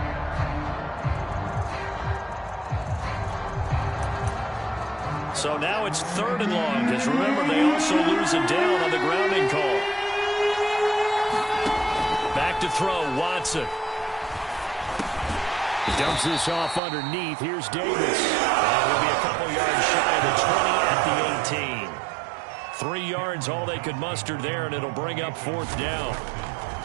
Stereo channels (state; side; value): drops out; left; at 16.8 s